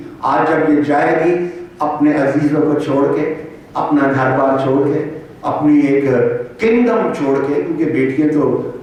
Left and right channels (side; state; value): both; identical; correlation 1.00